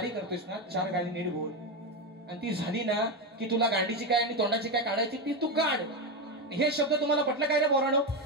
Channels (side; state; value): both; normal; correlation 0.12